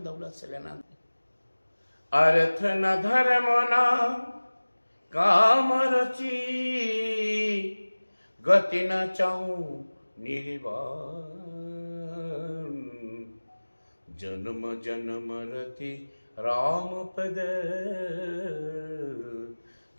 दौलत से लेना। अर्थ न धर्म न काम रची, गति न चाहूं निर्वाण, जन्म जन्म रति राम पद,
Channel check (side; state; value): both; inverted; correlation -1.00